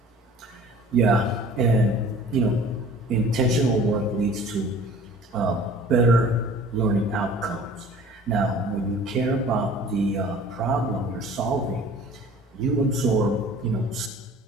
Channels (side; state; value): both; normal; correlation 0.47